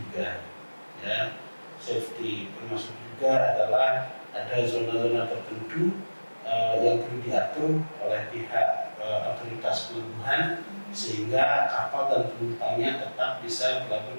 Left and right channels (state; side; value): inverted; both; correlation -1.00